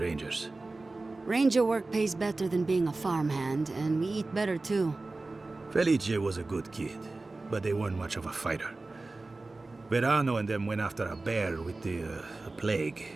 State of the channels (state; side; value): quieter; left; 3.3 dB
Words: Rangers. Ranger work pays better than being a farmhand, and we eat better too. Felice was a good kid, but they weren't much of a fighter. Verano and them went after a bear with the plague.